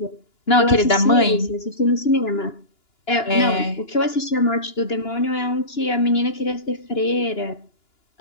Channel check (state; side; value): late; right; 2.9 ms